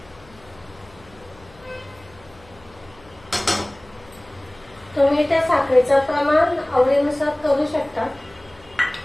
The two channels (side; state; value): left; noise; hum, 26 dB below the sound